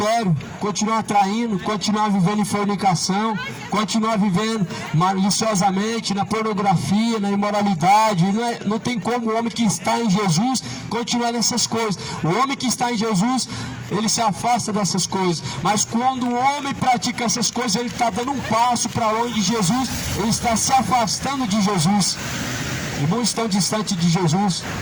continuar traindo, continuar vivendo em fornicação, continuar vivendo maliciosamente na pornografia, na imoralidade. Não tem como o homem que está em Jesus continuar nessas coisas. O homem que está em Jesus, ele se afasta dessas coisas. Mas quando o homem pratica essas coisas, ele está dando um passo para longe de Jesus, ele está se afastando de Jesus. E muitos estão distantes de Jesus.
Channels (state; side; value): identical; both; correlation 1.00